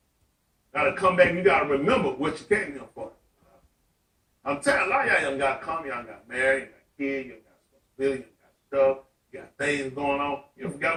Gotta come back, you gotta remember what you came here for. I'm telling you, a lot of y'all got come, y'all got married, you got kids, you got responsibility, you got stuff, you got things going on. You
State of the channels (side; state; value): both; identical; correlation 1.00